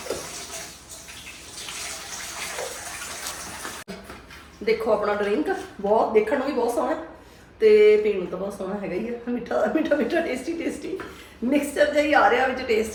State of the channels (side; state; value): both; identical; correlation 1.00